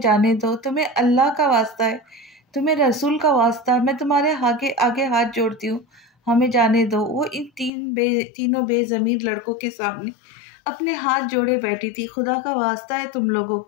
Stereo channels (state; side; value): drops out; right; at 7.7 s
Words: जाने दो, तुम्हें अल्लाह का वास्ता है, तुम्हें रसूल का वास्ता है, मैं तुम्हारे आगे आगे हाथ जोड़ती हूँ। हमें जाने दो। वो इन तीनों बेजमीर लड़कों के सामने अपने हाथ जोड़े बैठी थी। खुदा का वास्ता है तुम लोगों